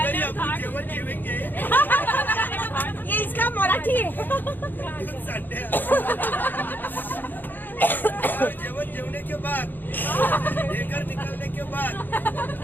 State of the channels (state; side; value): late; right; 0.090 ms